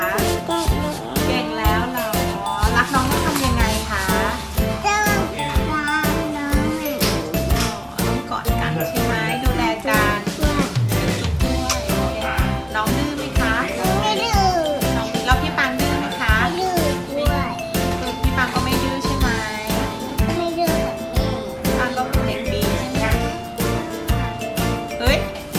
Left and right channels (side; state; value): both; identical; correlation 1.00